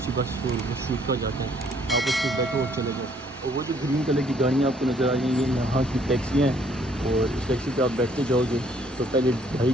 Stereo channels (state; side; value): normal; both; correlation 0.64